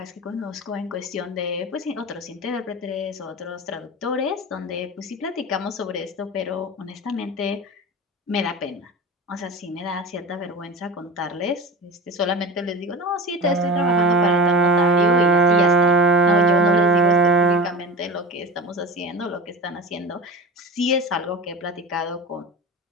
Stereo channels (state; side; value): normal; both; correlation 0.31